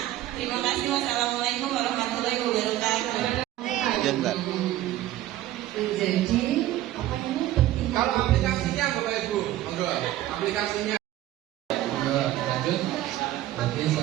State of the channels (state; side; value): quieter; left; 14.4 dB